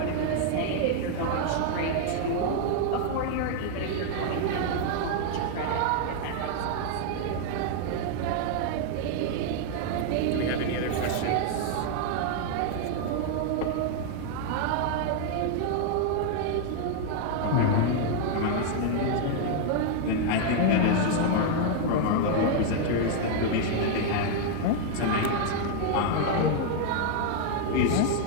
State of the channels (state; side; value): different; both; correlation 0.00